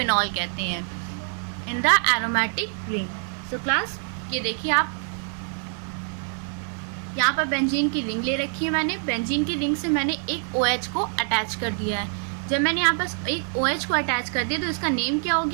कहते हैं in the aromatic ring. So class ये देखिए, आप यहाँ पर बेंजीन की रिंग ले रखी है। मैंने बेंजीन की रिंग से मैंने एक OH को अटैच कर दिया है। जब मैंने यहाँ पर एक OH को अटैच कर दिया तो इसका नेम क्या हो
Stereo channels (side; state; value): left; silent; 59 dB below the other